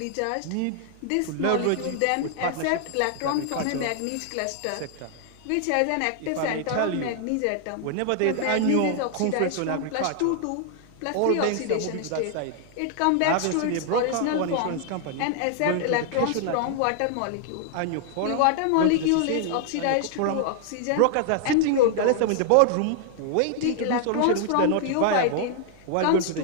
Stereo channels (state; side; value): different; both; correlation 0.00